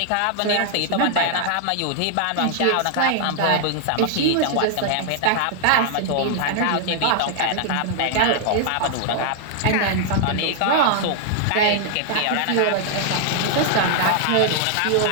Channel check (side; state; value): both; different; correlation 0.00